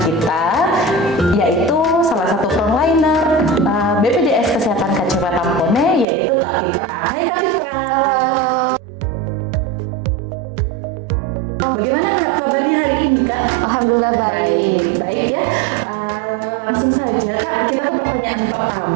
kita, yaitu salah satu frontliner BPJS Kesehatan KC Watampone, yaitu Kak Fitra. Hai Kak Fitra. Bagaimana kabarnya hari ini, Kak? Alhamdulillah baik ya. Langsung saja Kak, kita ke pertanyaan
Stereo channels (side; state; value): left; drops out; at 6.1 s